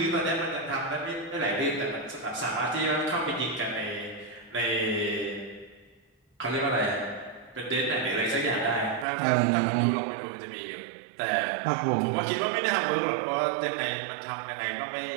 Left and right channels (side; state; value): left; drops out; at 9.1 s